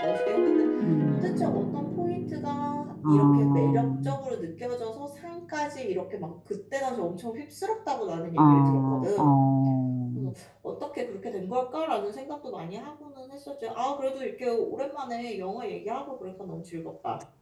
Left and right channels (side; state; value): both; identical; correlation 1.00